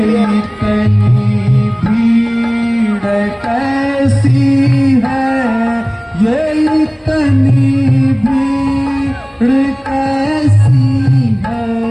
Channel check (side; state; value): both; identical; correlation 1.00